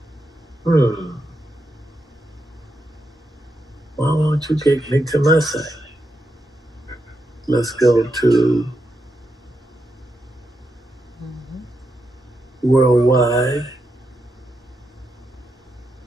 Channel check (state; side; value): normal; both; correlation 0.84